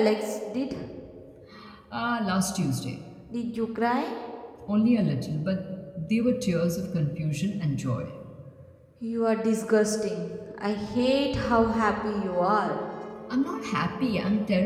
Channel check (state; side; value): identical; both; correlation 1.00